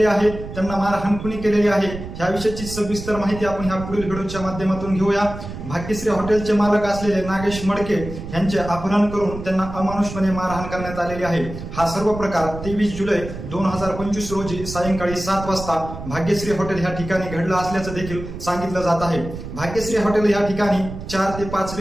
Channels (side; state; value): right; noise; rumble, 10 dB below the sound